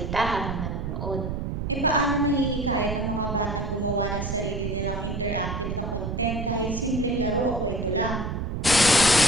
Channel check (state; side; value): noise; right; rumble, 4 dB below the sound